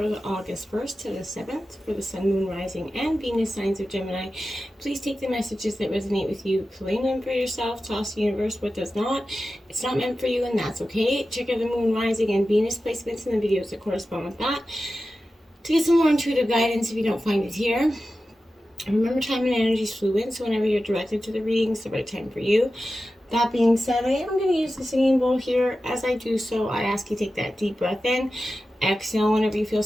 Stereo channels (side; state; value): both; normal; correlation 0.93